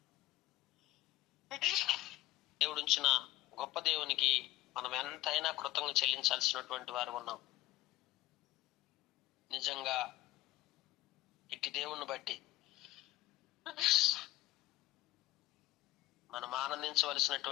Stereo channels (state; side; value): quieter; right; 17.0 dB